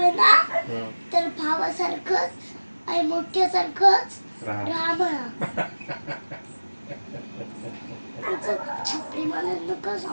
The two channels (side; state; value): both; inverted; correlation -1.00